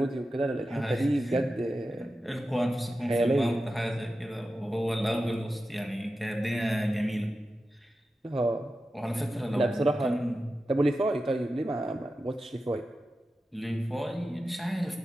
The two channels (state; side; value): normal; both; correlation 0.92